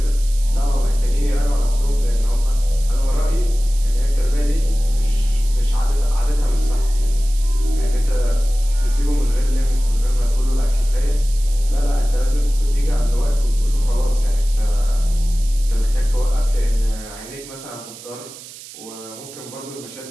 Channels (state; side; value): noise; right; hiss, 16 dB below the sound